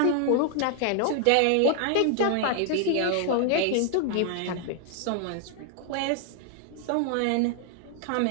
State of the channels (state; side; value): different; both; correlation 0.00